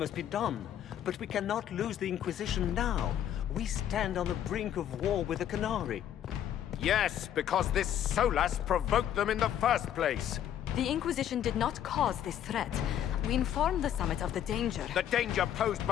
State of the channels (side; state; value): right; quieter; 10.4 dB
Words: be done, but we cannot lose the Inquisition now. We stand on the brink of war with the Canary. Yes, because this Solas provoked them in the first place. The Inquisition did not cause this threat. We informed the Summit of the danger. The danger posed